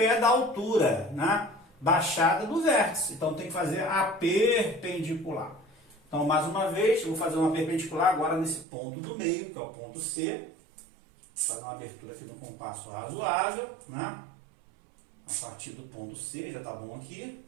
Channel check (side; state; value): left; drops out; at 8.7 s